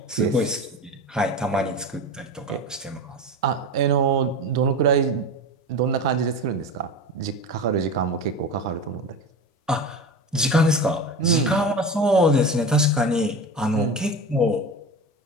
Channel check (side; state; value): both; normal; correlation 0.28